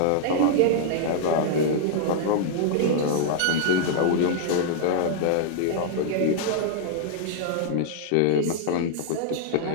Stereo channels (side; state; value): both; different; correlation -0.01